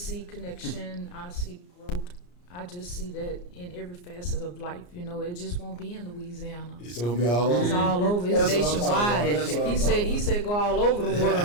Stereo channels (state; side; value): late; right; 34 ms